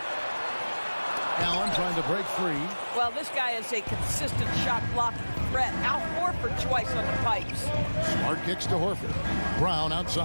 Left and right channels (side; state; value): both; inverted; correlation -1.00